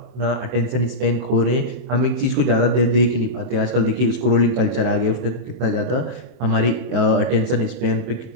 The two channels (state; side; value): late; left; 23 ms